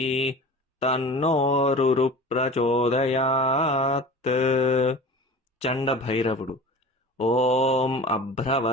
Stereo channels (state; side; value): normal; both; correlation 0.37